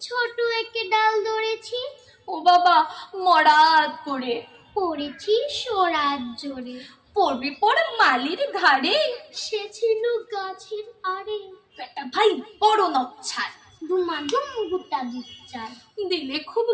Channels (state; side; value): identical; both; correlation 1.00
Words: ছোট একে ডাল ধরেছি, ও বাবা মরাত করে পড়েছি সরাত জোরে। পড়বি পড় মালির ঘাড়ে, সে ছিল গাছের আড়ে, বেটা ভাই বড় নচ্ছার, দুমাদুম গুটা দুচ্চার, দিলে খুব